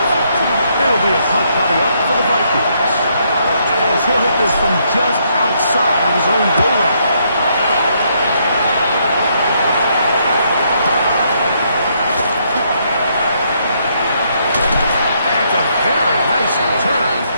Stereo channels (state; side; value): inverted; both; correlation -0.73